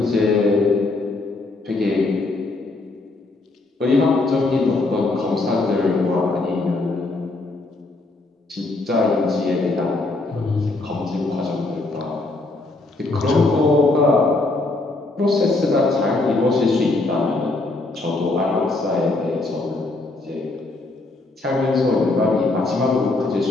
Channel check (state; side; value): quieter; right; 3.1 dB